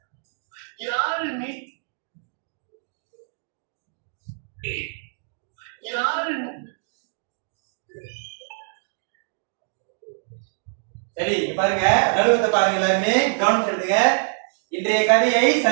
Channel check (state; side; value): silent; left; 62 dB below the other